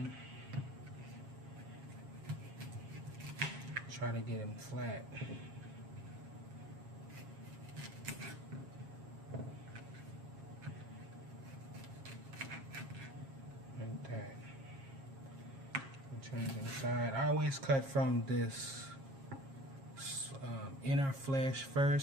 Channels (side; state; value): left; late; 7.4 ms